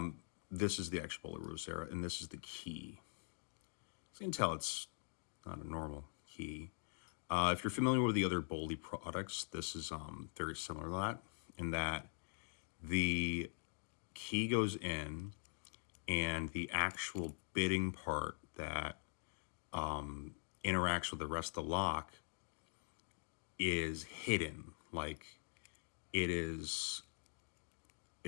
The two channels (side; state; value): right; silent; digital silence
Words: This is the actual Bowley Rotasera, and this is the key. So you can tell it's not a normal key. If you're familiar with the other Bowley products, this is very similar to that, in that the key goes in and the actual bitting part that interacts with the rest of the lock is hidden. Like it's